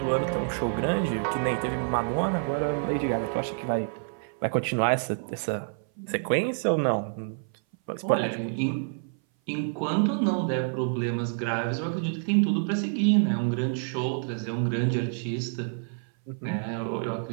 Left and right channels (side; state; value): left; silent; 58 dB below the other